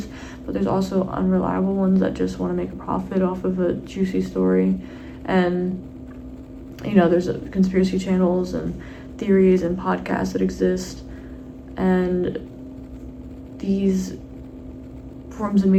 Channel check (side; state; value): both; identical; correlation 1.00